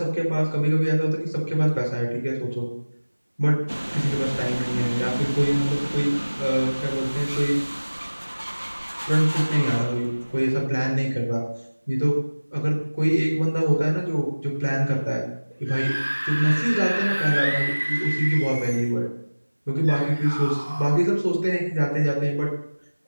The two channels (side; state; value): both; inverted; correlation -1.00